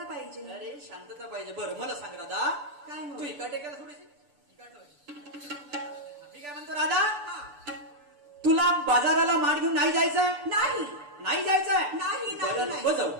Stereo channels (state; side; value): late; left; 6.8 ms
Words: पाहिजे. अरे शांतता पाहिजे. बरं मला सांग राधा, काय तू इकडे का थोडीशी? मी काय म्हणतो राधा, तुला बाजाराला माठ घेऊन नाही जायचंय? नाही. नाही जायचंय? नाही. नको जाऊ,